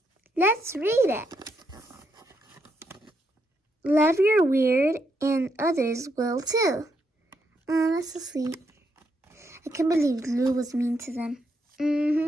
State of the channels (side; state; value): both; normal; correlation 0.78